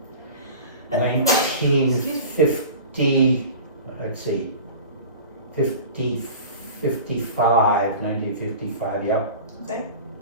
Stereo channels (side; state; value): both; inverted; correlation -0.37